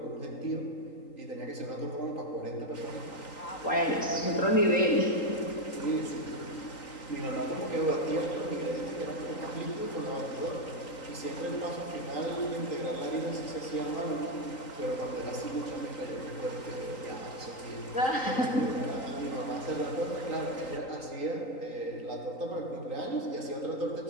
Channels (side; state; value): right; late; 3.9 ms